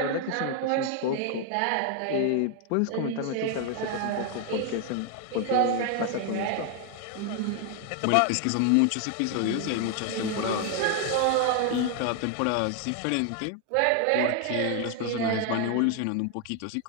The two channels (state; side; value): different; both; correlation 0.01